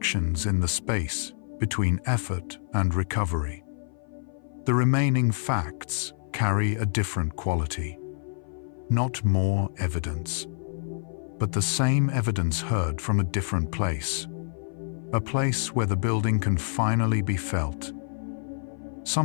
in the space between effort and recovery. The remaining facts carry a different quality. Not more evidence, but the same evidence heard from a different place. A place where the building can finally be felt.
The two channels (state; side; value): silent; right; 55 dB below the other